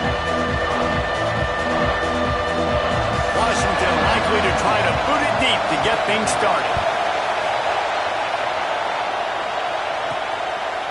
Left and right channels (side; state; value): both; identical; correlation 1.00